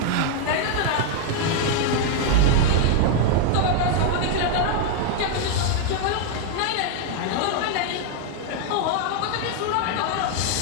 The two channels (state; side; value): different; both; correlation 0.00